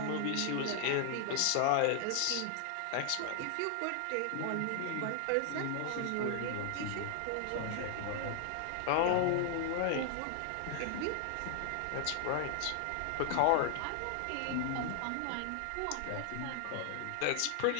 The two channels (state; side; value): different; both; correlation 0.00